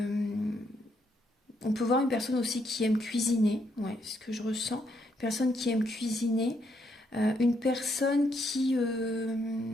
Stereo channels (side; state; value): both; normal; correlation 0.75